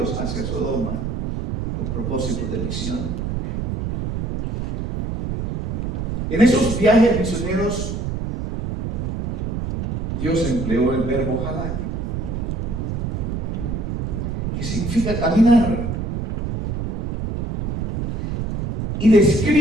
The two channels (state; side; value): noise; right; rumble, 3 dB below the sound